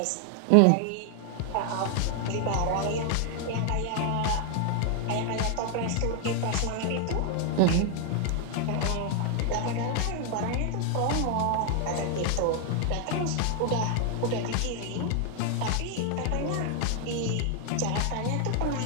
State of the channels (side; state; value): both; different; correlation 0.00